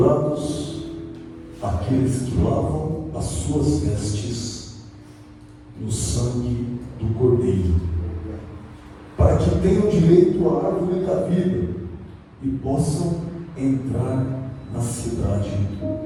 aqueles que lavam as suas vestes no sangue do Cordeiro, para que tenham direito à árvore da vida e possam entrar na cidade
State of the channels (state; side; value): identical; both; correlation 1.00